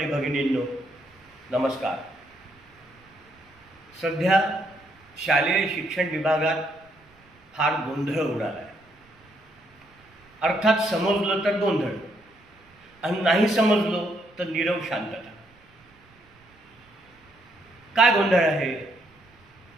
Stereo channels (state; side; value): noise; right; rumble, 30 dB below the sound